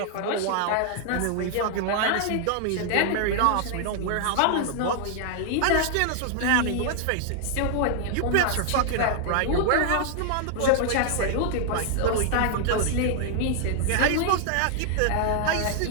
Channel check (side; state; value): both; different; correlation 0.00